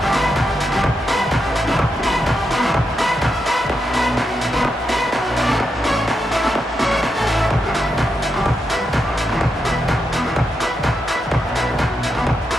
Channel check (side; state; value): both; normal; correlation 0.84